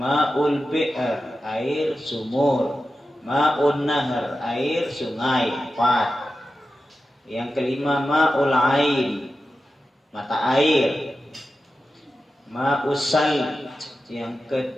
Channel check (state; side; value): normal; both; correlation 0.92